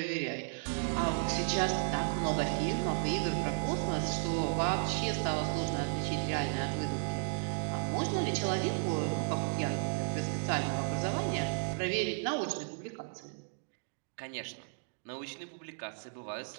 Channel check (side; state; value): left; silent; digital silence